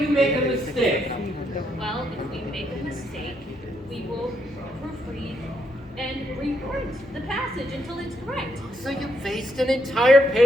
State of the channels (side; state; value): both; normal; correlation 0.76